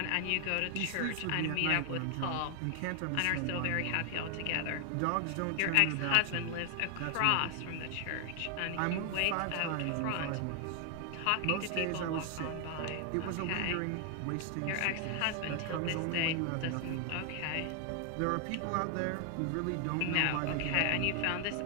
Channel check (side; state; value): both; different; correlation 0.00